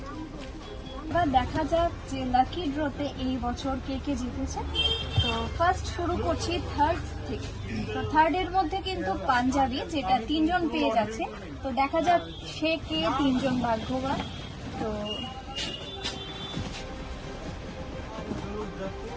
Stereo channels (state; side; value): identical; both; correlation 1.00